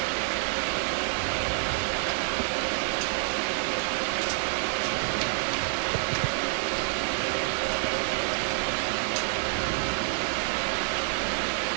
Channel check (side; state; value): left; silent; 57 dB below the other